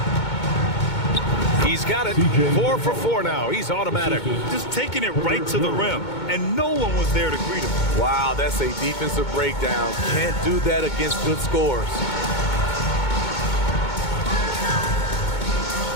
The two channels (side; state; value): right; late; 2.2 ms